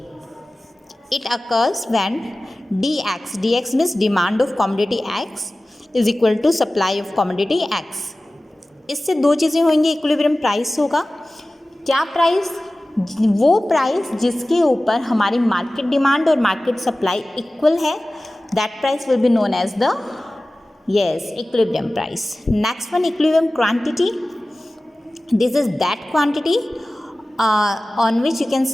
it occurs when dx means demand of commodity x is equal to supply of commodity x। इससे दो चीज़ें होंगी, इक्विलिब्रियम प्राइस होगा। क्या प्राइस? वो प्राइस जिसके ऊपर हमारी मार्केट डिमांड और मार्केट सप्लाई इक्वल है, that price will be known as the equilibrium price. Next one, equilibrium quantity. This is that quantity on which you can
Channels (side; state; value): both; normal; correlation 0.97